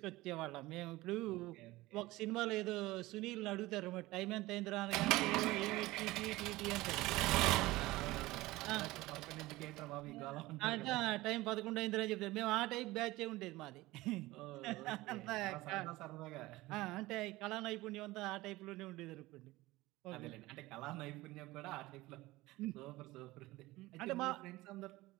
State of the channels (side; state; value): left; quieter; 19.2 dB